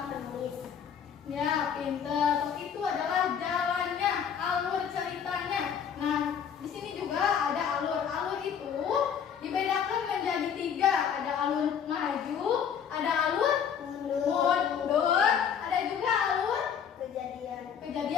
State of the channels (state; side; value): quieter; right; 7.8 dB